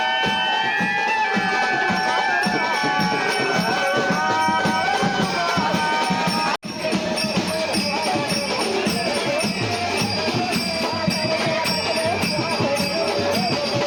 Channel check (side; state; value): both; identical; correlation 1.00